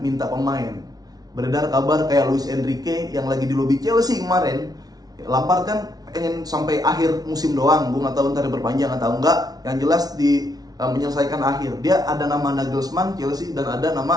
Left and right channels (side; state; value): left; late; 0.19 ms